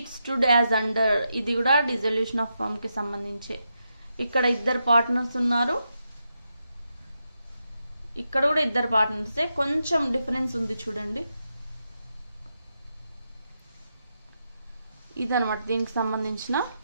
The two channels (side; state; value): both; inverted; correlation -0.85